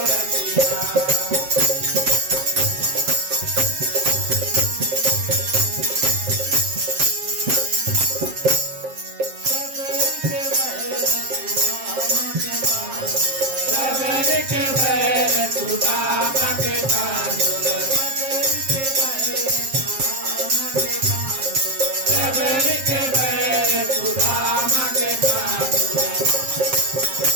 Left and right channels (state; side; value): late; left; 7.5 ms